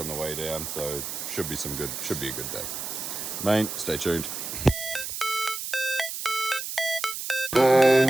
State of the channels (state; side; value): noise; right; hiss, 6 dB below the sound